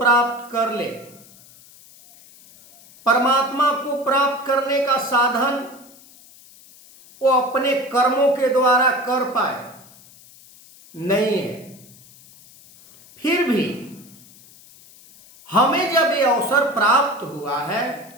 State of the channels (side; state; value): left; noise; hiss, 24 dB below the sound